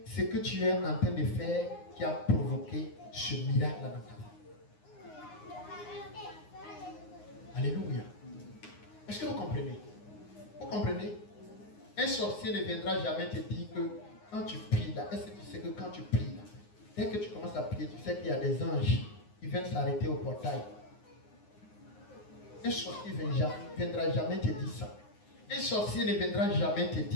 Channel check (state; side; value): late; right; 9.6 ms